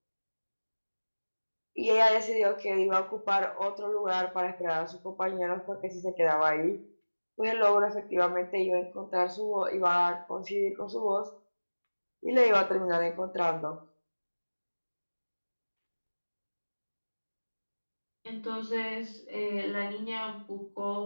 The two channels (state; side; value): inverted; both; correlation -1.00